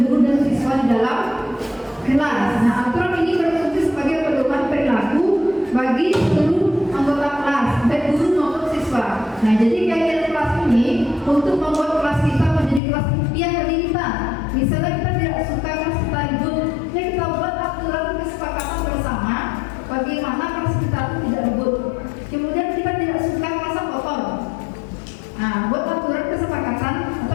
dan siswa di dalam kelas. Nah, aturan ini berfungsi sebagai pedoman perilaku bagi seluruh anggota kelas, baik guru maupun siswa. Nah, jadi keyakinan kelas ini untuk membuat kelas kita menjadi kelas impian bagi kita. Misalnya kita tidak suka kelas kita ribut, ya kita buat aturan kesepakatan bersama bagaimana kelas kita itu tidak ribut. Kemudian kita tidak suka kelas kotor. Nah, buat aturan kesepakatan atau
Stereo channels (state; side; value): drops out; right; at 12.8 s